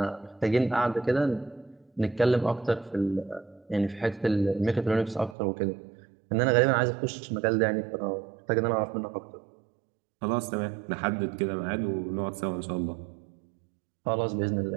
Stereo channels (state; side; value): drops out; left; at 5.4 s